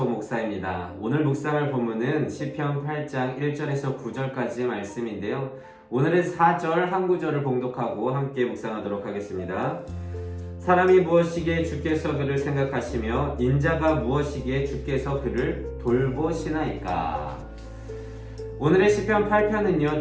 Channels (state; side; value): identical; both; correlation 1.00